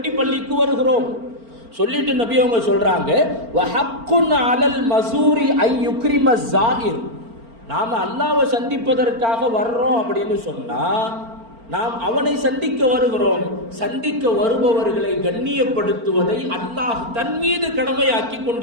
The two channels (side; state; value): left; late; 4.4 ms